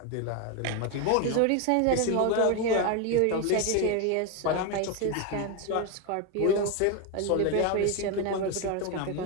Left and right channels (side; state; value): both; different; correlation 0.01